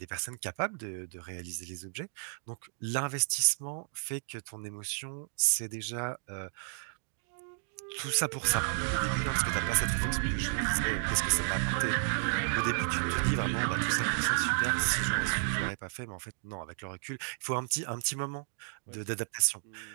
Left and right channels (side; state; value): left; silent; digital silence